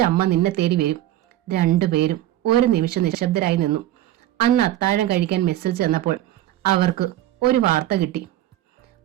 അമ്മ നിന്നെ തേടി വരും. രണ്ടുപേരും ഒരു നിമിഷം നിശബ്ദരായി നിന്നു. അന്ന് അത്താഴം കഴിക്കാൻ മെസ്സിൽ ചെന്നപ്പോൾ അവർക്ക് ഒരു വാർത്ത കിട്ടി.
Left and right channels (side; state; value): left; quieter; 13.8 dB